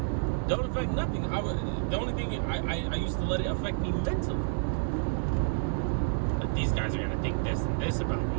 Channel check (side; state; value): left; silent; digital silence